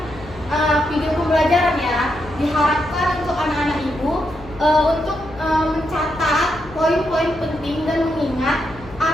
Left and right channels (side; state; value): left; noise; hum, 18 dB below the sound